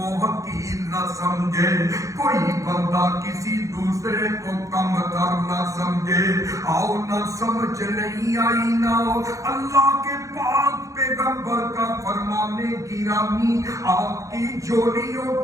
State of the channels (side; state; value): left; late; 0.16 ms